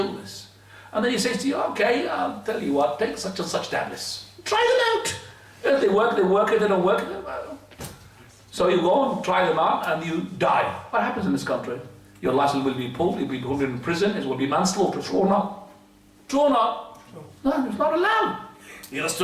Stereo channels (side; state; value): both; identical; correlation 1.00